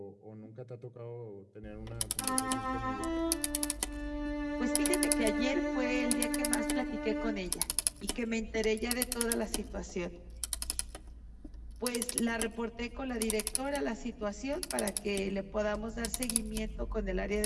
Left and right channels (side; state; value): both; identical; correlation 1.00